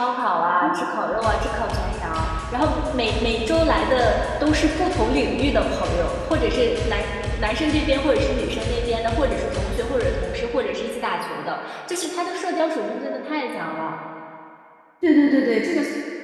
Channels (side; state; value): both; identical; correlation 1.00